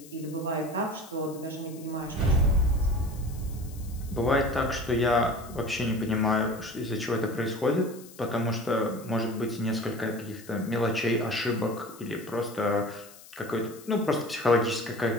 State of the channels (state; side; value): noise; left; hiss, 20 dB below the sound